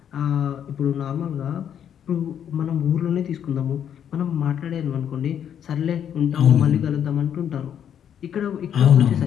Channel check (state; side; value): quieter; right; 9.1 dB